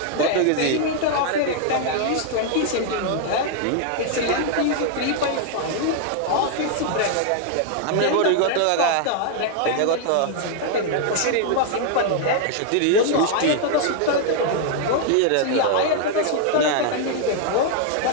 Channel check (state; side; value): different; both; correlation 0.00